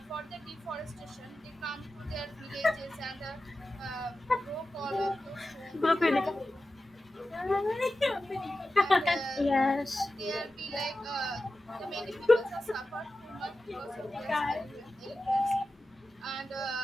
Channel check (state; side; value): normal; both; correlation 0.93